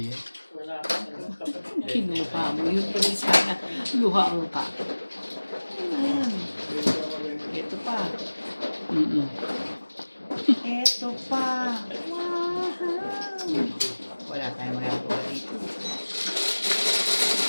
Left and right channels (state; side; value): inverted; both; correlation -1.00